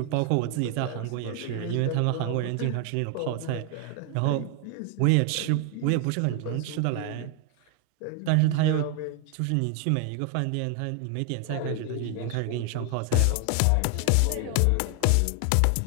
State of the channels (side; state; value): both; different; correlation 0.00